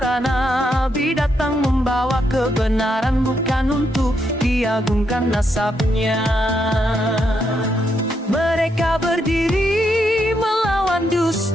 nabi. Datang membawa kebenaran, bukan untuk diagungkan nasabnya. Mereka berdiri melawan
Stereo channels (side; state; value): both; normal; correlation 0.79